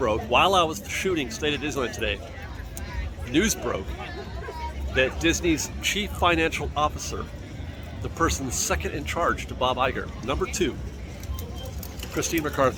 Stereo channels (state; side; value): identical; both; correlation 1.00